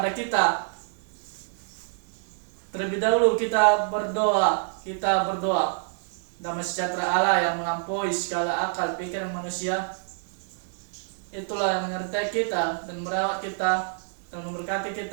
kita. Terlebih dahulu kita berdoa. Damai sejahtera Allah yang melampaui segala akal pikiran manusia, itulah yang menyertai kita dan merawat kita dan memberkati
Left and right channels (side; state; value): left; silent; 60 dB below the other